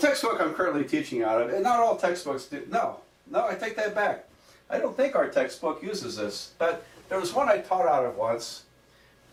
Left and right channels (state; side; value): identical; both; correlation 1.00